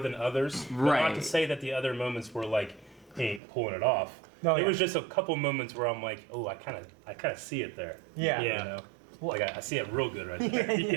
others. But not Right. to say that the other moments were like he ain't pulling it off. No, it yeah. was just a couple moments where I'm like, oh, I kind of see it there. Yeah. Yeah. Like I see it real good right there.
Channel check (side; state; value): left; drops out; at 3.4 s